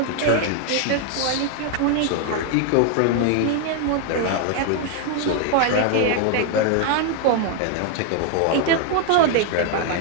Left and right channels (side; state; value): both; different; correlation 0.00